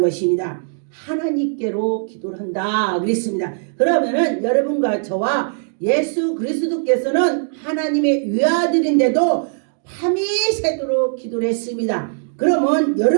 하나님께로 기도를 한다 그랬습니다. 그러면은 여러분과 저와 예수 그리스도께서는 하나님의 외아들인데도 밤이 새도록 기도를 했습니다. 그러면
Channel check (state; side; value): silent; left; digital silence